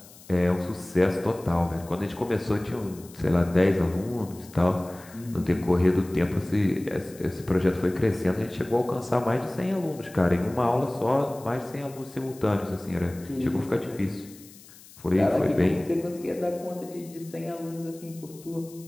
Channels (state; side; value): noise; left; hiss, 21 dB below the sound